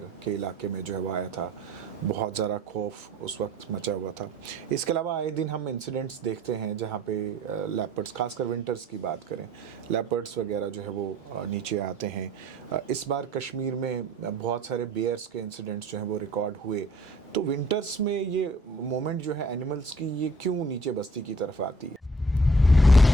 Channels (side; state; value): both; normal; correlation 0.55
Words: के इलाके में जो है वो आया था। बहुत ज़्यादा खौफ उस वक्त मचा हुआ था। इसके अलावा आए दिन हम इंसिडेंट्स देखते हैं जहाँ पे लेपर्ड्स, खासकर विंटर्स की बात करें, लेपर्ड्स वगैरह जो है वो नीचे आते हैं। इस बार कश्मीर में बहुत सारे बेयर्स के इंसिडेंट्स जो हैं वो रिकॉर्ड हुए। तो विंटर्स में ये मोमेंट जो है एनिमल्स की, ये क्यों नीचे बस्ती की तरफ आती है?